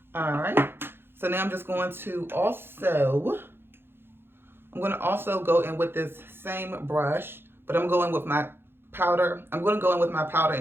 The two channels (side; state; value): left; late; 0.11 ms